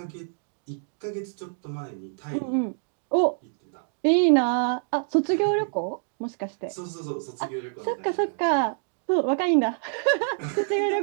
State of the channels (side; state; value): left; silent; digital silence